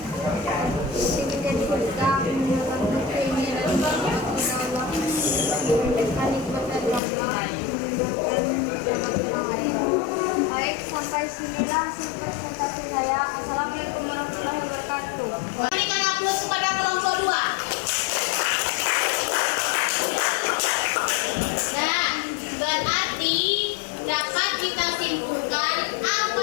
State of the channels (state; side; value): drops out; right; at 7.0 s